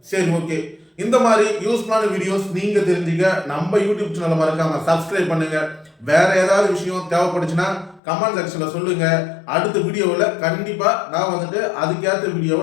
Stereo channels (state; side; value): drops out; right; at 8.0 s